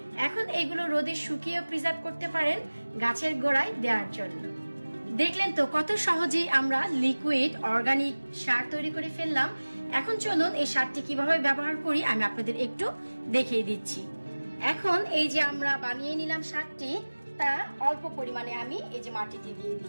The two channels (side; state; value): both; inverted; correlation -1.00